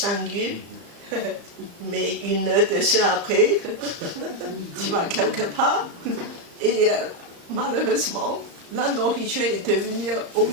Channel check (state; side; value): late; left; 35 ms